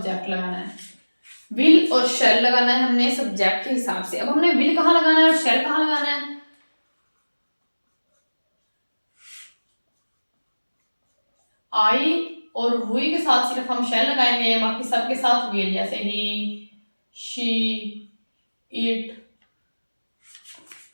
लगाना है। विल और शैल लगाना है हमने सब्जेक्ट के हिसाब से। अब हमने विल कहाँ लगाना है और शैल कहाँ लगाना है? आई और हुई के साथ सिर्फ हम शैल लगाएंगे, बाकी सबके साथ विल, जैसे he, she, it,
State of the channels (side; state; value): both; inverted; correlation -1.00